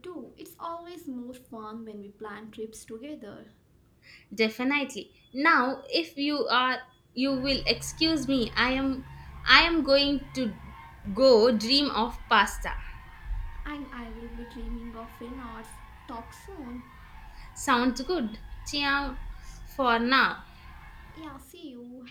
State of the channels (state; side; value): identical; both; correlation 1.00